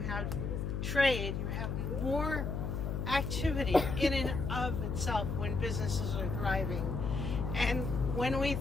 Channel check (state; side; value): noise; left; hum, 2 dB below the sound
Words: trade, you have more activity in and of itself when businesses are thriving. And when we